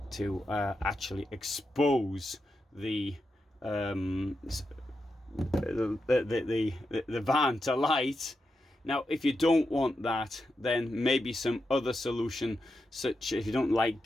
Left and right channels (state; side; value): normal; both; correlation 0.87